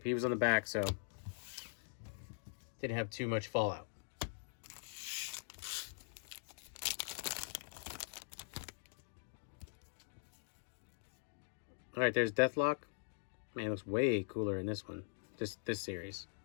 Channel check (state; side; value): silent; right; digital silence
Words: He was on the back, so didn't have too much fallout. All right, there's Deathlock. Man, it looks way cooler in this one. This series.